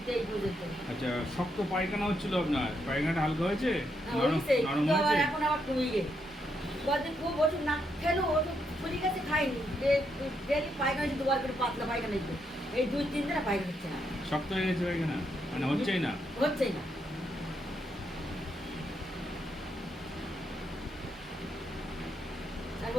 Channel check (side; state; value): both; normal; correlation 0.79